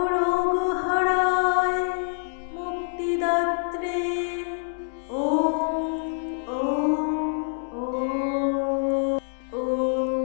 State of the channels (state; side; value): silent; right; digital silence